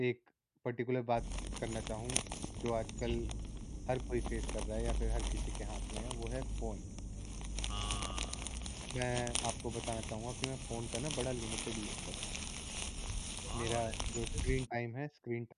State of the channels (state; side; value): identical; both; correlation 1.00